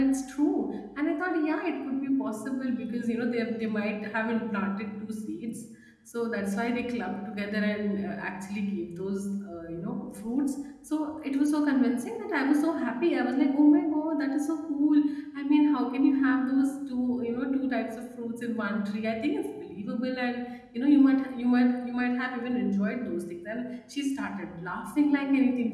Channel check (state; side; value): identical; both; correlation 1.00